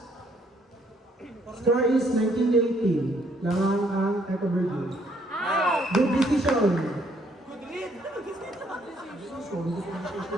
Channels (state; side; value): normal; both; correlation 0.67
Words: Score is 19-18. Lamang ang Eco Virgin. Good decision. Good read.